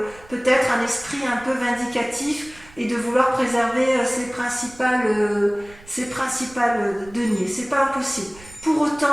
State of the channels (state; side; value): noise; right; rumble, 22 dB below the sound